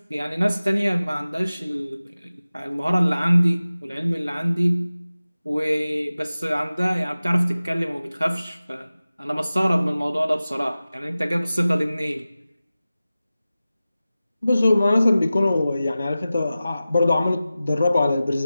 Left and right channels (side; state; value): both; inverted; correlation -0.96